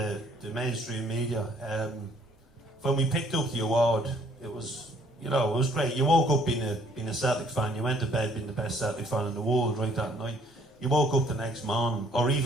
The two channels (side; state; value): both; normal; correlation 0.62